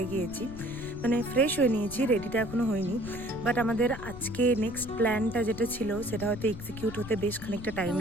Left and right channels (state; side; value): noise; left; rumble, 12 dB below the sound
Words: গিয়েছি, মানে ফ্রেশ হয়ে নিয়েছি, রেডিটা এখনও হয়নি। বাট আমাদের আজকে নেক্সট প্ল্যানটা যেটা ছিল সেটা হয়তো এক্সিকিউট হতে বেশ খানিকটা টাইম